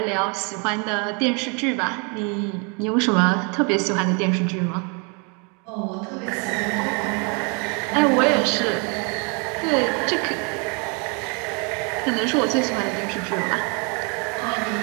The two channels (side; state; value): left; quieter; 34.2 dB